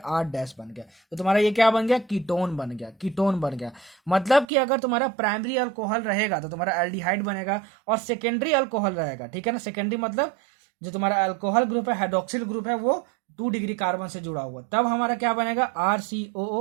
R डैश बन गया, तो तुम्हारा ये क्या बन गया, कीटोन बन गया, कीटोन बन गया। मतलब कि अगर तुम्हारा प्राइमरी अल्कोहल रहेगा तो तुम्हारा एल्डिहाइड बनेगा और सेकेंडरी अल्कोहल रहेगा, ठीक है ना, सेकेंडरी मतलब जो तुम्हारा अल्कोहल ग्रुप है, हाइड्रोक्सिल ग्रुप है, वो 2 डिग्री कार्बन से जुड़ा हुआ, तब हमारा क्या बनेगा,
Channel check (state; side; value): drops out; left; at 4.5 s